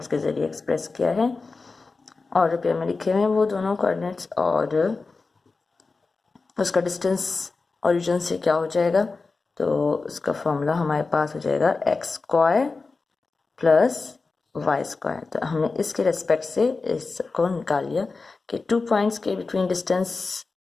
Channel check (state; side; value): quieter; right; 4.0 dB